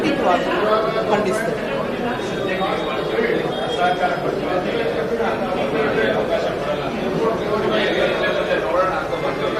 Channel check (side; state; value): both; identical; correlation 1.00